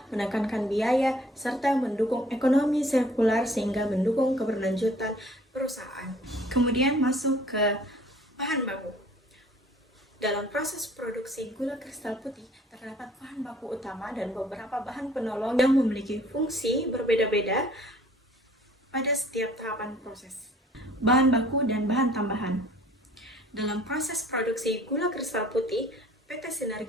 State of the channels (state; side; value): normal; both; correlation 0.54